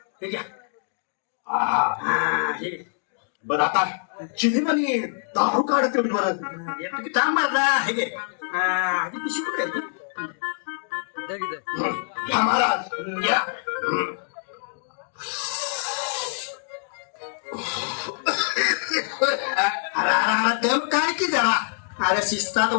हे घ्या. हे. बरं आता चिनीमध्ये दारू काढत बरं. का मारला. हे घे. आधी पिशवी कुठे आहे ती? घ्या महाराज घ्या. दम काय की जरा. अरे शिस्तात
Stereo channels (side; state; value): right; silent; digital silence